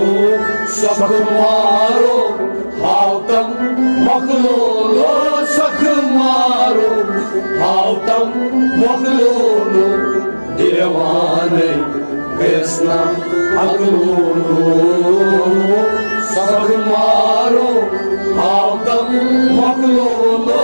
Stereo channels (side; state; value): both; inverted; correlation -1.00